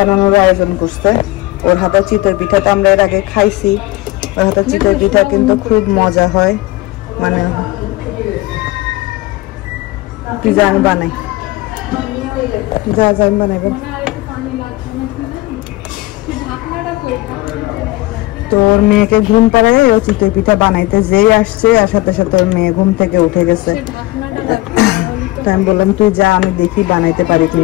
আয়োজন করছে। ওর হাতে চিতই পিঠাটা আমরা এর আগে খাইছি, ওর হাতে চিতই পিঠা কিন্তু খুব মজা হয়। মানে পিজা আমি বানাই, আমি বানাবো। তোর মেয়েকে ঘুম পাড়ায় ও চিতই পিঠা বানাইতে যেই আসছে, আর সাথে সাথে ওর মেয়ে ঘুম থেকে উঠে গেছে। তো আমি বললাম তুই যা, আমি দেখি বানাইতে পারি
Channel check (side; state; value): right; quieter; 19.6 dB